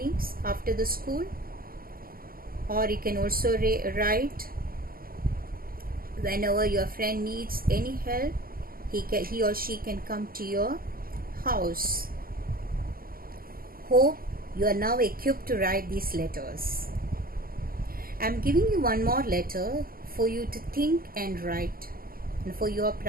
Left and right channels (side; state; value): left; late; 0.42 ms